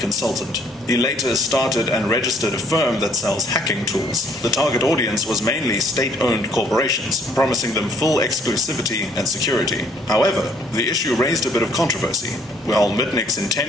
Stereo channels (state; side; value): normal; both; correlation 0.63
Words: He later started and registered a firm that sells hacking tools. The target audience was mainly state-owned corporations, promising them full exclusivity and security. However, the issue raised a bit of controversy. While Mitnick's